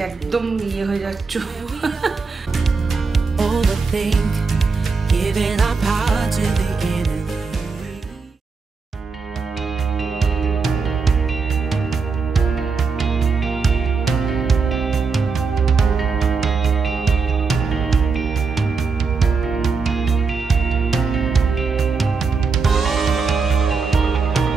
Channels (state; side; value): quieter; left; 4.7 dB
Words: একদম ইয়ে হয়ে যাচ্ছ। Overthink, giving our power to the enemy.